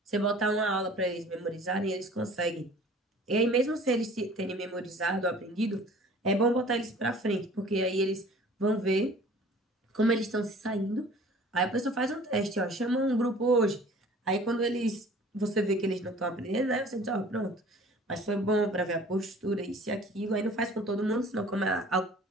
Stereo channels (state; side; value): normal; both; correlation 0.49